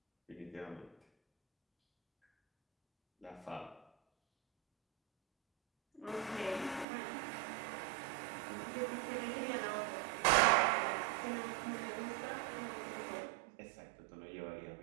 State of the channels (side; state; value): left; drops out; at 6.9 s